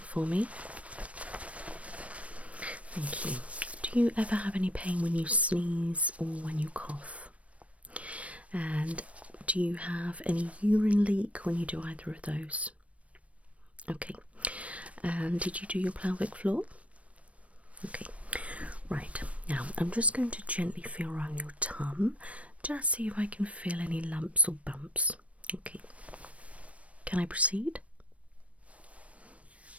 for me. Thank you. Do you ever have any pain when you sneeze or when you cough? And do you have any urine leak when you do either of those? Okay. And did you do your pelvic floor? Okay, right, now I'm just going to gently feel around your tum, just see if I can feel any lumps or bumps. Okay, can I proceed?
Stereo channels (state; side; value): late; left; 0.064 ms